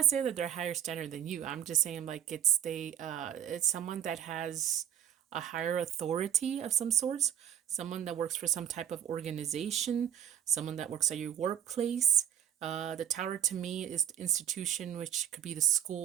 saying that they're higher standard than you. I'm just saying like it's someone that has a higher authority of some sorts, someone that works for some type of organization, someone that works at your workplace. The tower to me is the institution, which could be the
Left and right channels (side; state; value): left; quieter; 9.7 dB